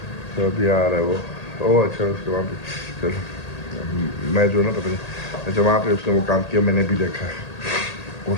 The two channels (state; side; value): late; right; 1.8 ms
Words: तो अभी आ रहा है वो। ओह अच्छा, उसके वहाँ पे चलो, मैं जो ना पता नहीं, अच्छा वहाँ पे उसने वो काम किया, मैंने भी देखा है, वो